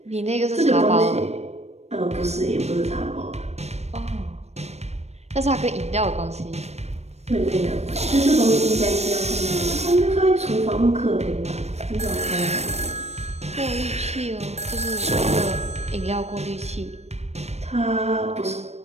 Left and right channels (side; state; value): left; late; 0.31 ms